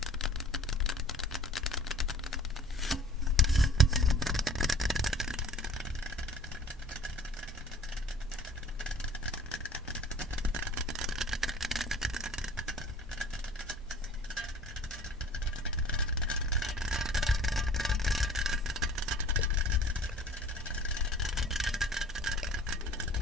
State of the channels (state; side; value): normal; both; correlation 0.47